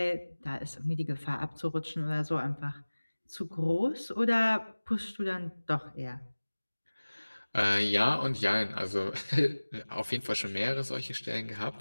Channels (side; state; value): both; inverted; correlation -1.00